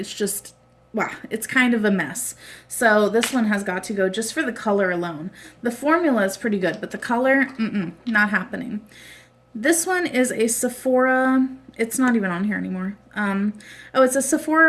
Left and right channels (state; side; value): identical; both; correlation 1.00